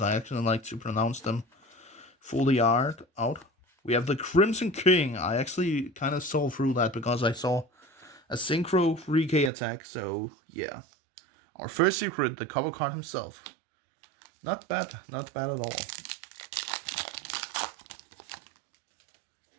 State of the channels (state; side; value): drops out; left; at 9.5 s